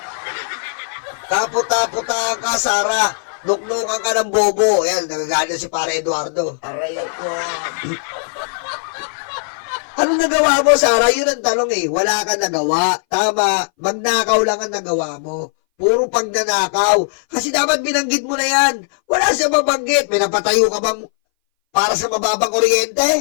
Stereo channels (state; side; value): silent; right; 61 dB below the other